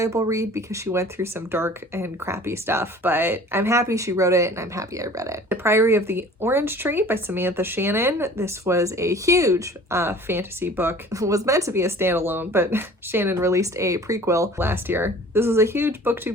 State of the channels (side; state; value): both; normal; correlation 0.47